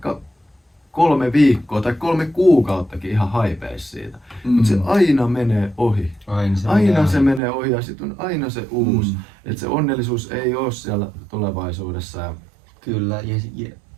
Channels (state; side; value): drops out; left; at 7.4 s